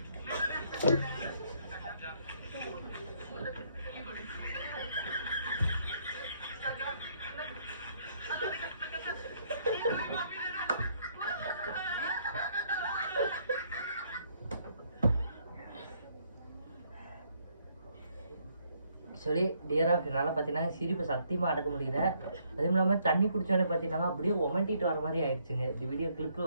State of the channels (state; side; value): inverted; both; correlation -0.69